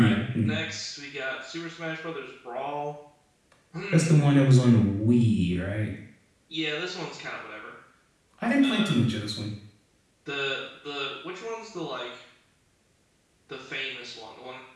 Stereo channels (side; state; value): both; identical; correlation 1.00